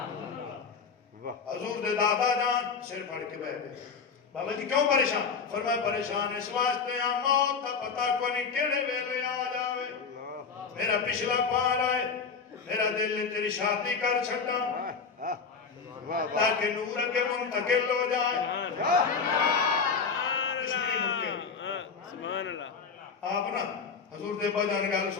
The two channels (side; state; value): right; quieter; 5.5 dB